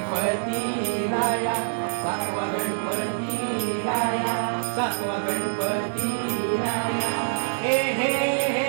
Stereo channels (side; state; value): left; silent; digital silence